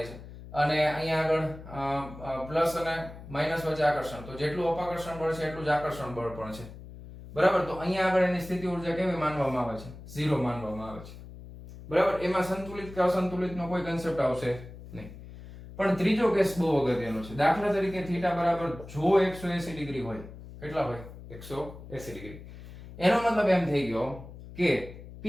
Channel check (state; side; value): noise; left; hum, 15 dB below the sound